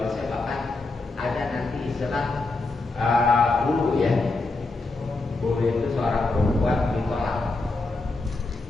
saya bahkan ada nanti istilah bulu ya. Bulu itu seorang perempuan ditolak.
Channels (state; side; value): quieter; right; 3.4 dB